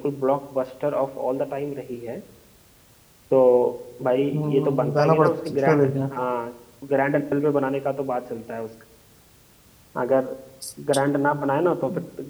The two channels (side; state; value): both; identical; correlation 1.00